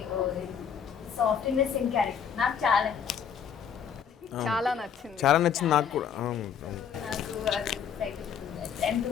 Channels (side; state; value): right; quieter; 7.7 dB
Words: softness in character. నాకు చాలా చాలా నచ్చింది. చాలా నచ్చింది నాకు కూడా. నాకు అది excited to do that and to